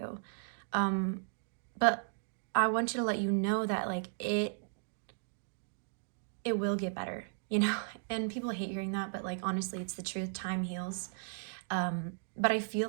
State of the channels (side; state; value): left; silent; digital silence